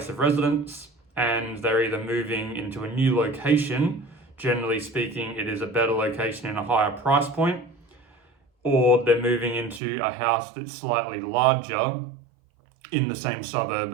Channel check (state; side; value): drops out; left; at 9.8 s